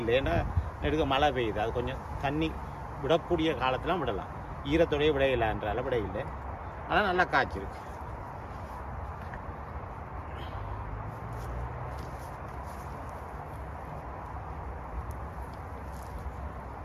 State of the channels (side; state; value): both; identical; correlation 1.00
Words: இல்லை, ஏன்னா நெடுக்க மழை பெய்யுது. அது கொஞ்சம் தண்ணி விடக்கூடிய காலத்திலாம் விடலாம். ஈரத்தோடையே விட இல்லைன்றால விட இல்லை. அதெல்லாம் நல்லா காய்ச்சிருக்கு.